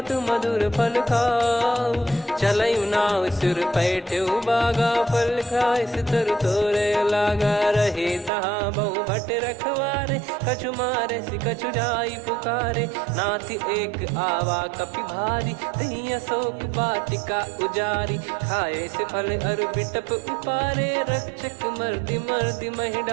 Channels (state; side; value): drops out; left; at 8.3 s